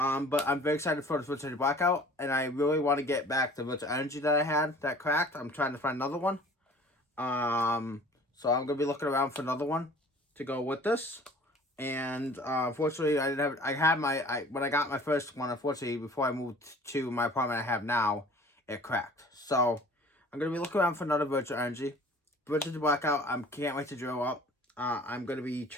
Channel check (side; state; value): both; normal; correlation 0.48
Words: I'm very excited for the Virtual Blackout, and I really want to get back the Virtual Energy that I had that cracked. I'm trying to find another one. So I'm going to be looking around for another one to go with this. And unfortunately, I didn't have, when I got my first one, unfortunately, before I moved to my apartment I have now, it cracked. So I'm going to be looking around for another Virtual Energy. Virtual Blackout, I can't wait to drill up. I'm going to be